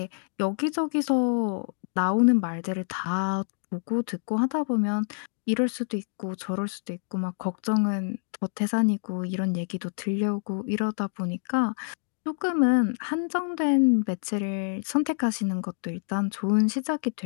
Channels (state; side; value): silent; right; digital silence